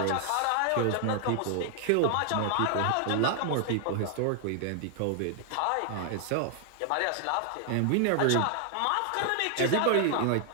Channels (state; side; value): different; both; correlation 0.00